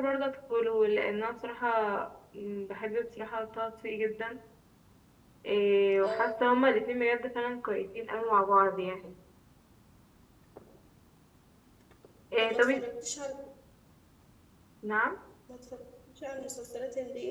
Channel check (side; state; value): both; identical; correlation 1.00